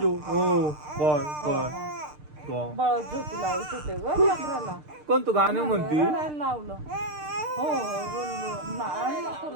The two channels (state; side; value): late; left; 6.6 ms